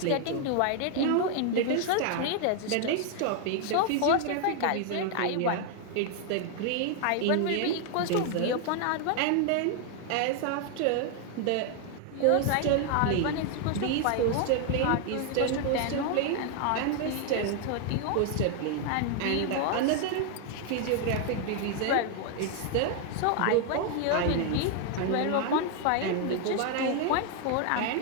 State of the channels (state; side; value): different; both; correlation 0.00